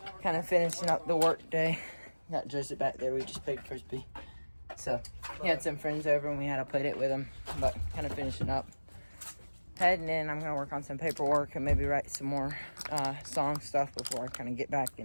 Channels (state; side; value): inverted; both; correlation -1.00